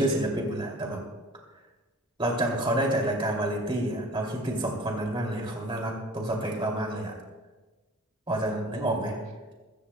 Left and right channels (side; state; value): both; normal; correlation 0.45